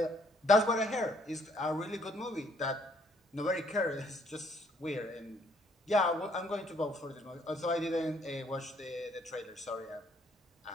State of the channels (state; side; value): normal; both; correlation 0.65